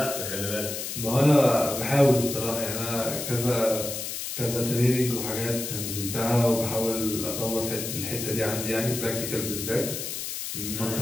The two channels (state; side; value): noise; left; hiss, 5 dB below the sound